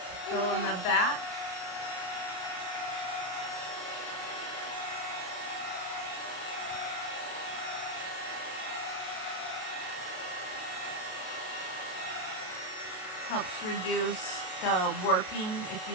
go in the back, helps reduce the warping if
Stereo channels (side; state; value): right; late; 33 ms